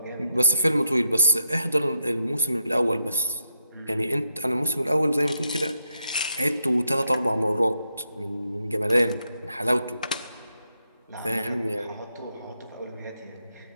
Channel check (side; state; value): both; inverted; correlation -0.82